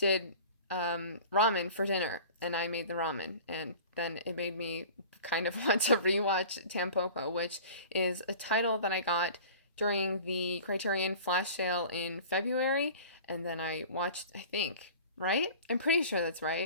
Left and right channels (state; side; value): inverted; both; correlation -0.41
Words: ramen for dinner, and I made the ramen, and then it made me kind of want to rewatch Tampopo, which is a title that I got during the Criterion flash sale in February, and then I watched, I think, right? I'm pretty sure that's